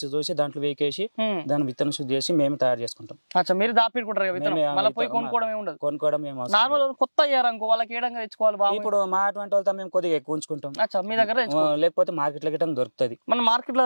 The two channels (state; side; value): inverted; both; correlation -1.00